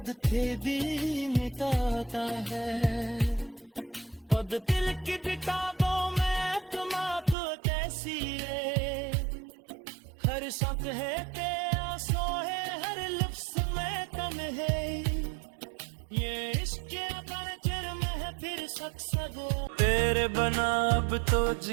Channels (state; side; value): drops out; left; at 7.4 s